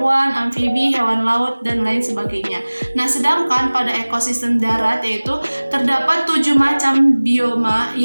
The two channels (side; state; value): both; inverted; correlation -1.00